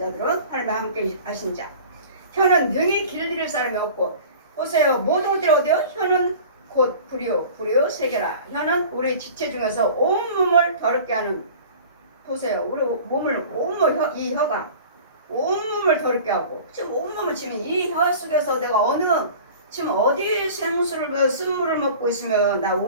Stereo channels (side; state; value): both; inverted; correlation -0.42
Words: 하나님과 함께 하신 자. 혀는 능히 길들일 사람이 없고, 보세요. 모든 것들이 어디요? 혀는 곧 불이요, 불이요 세계라. 혀는 우리 지체 중에서 온몸을 더럽게 하는, 보세요. 우리 몸을 온몸, 이 혀가 온몸을 더럽게 하고, 지금 온몸을 지금 이 혀 속에서 내가 지금 어디 생수를 쓴물을 먹고 있으면 나